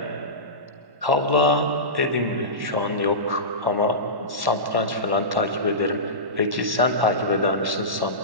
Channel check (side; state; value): left; late; 1.1 ms